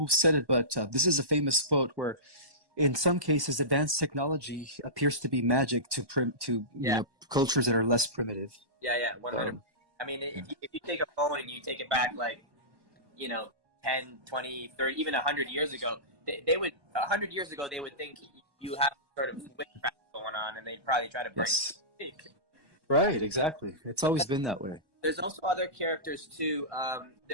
said it, but this is a famous quote where in some cases, advanced technology appears to be magic to cultures that are less primitive. Yeah, 100. I mean, if you take a phone and you take it back, like, 10, 20, 30, even 100 years ago, they would 100 years ago they would think you have sort of witchcraft going on, and they'd probably try to bring it. Right, exactly. It's always been that way. There's also other characters too.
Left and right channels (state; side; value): late; left; 1.1 ms